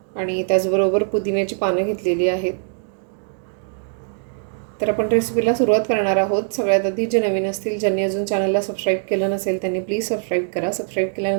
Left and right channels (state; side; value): silent; left; 65 dB below the other